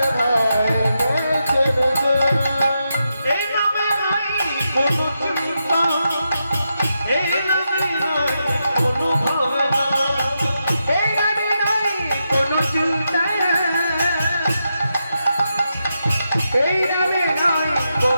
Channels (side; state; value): both; inverted; correlation -0.86